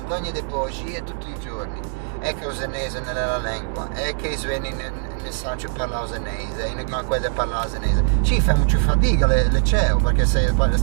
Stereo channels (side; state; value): left; silent; digital silence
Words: di bugie tutti i giorni. È che il senese nella lingua, è che i suoni nel Sancio parla senese, in Ganquede parla senese. Ci fa molto fatica le CEO, perché se